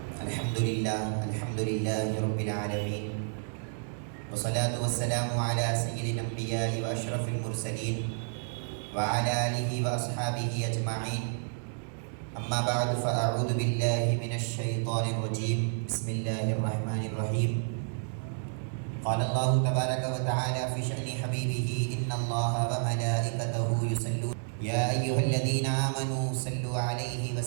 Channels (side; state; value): left; silent; digital silence